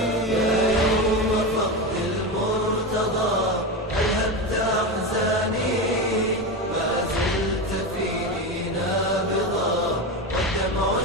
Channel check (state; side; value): normal; both; correlation 0.18